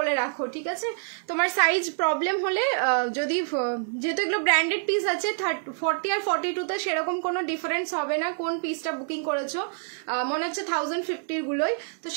রাখো, ঠিক আছে। তোমার সাইজ প্রবলেম হলে, যদি যেহেতু এগুলো ব্র্যান্ডেড পিস আছে, 40 আর 42 তে সেরকম কোনো ডিফারেন্স হবে না। কোন পিসটা বুকিং করেছো মনে হচ্ছে 1050 গুলোই, তো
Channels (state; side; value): silent; left; 60 dB below the other